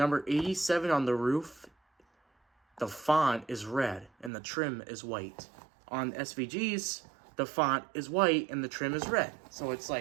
87 on the roof, the font is red and the trim is white. On SVGs, the font is white and the trim is red. So it's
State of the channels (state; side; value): drops out; left; at 4.3 s